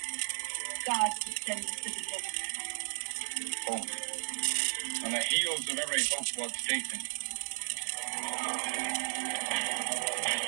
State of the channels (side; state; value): left; silent; 55 dB below the other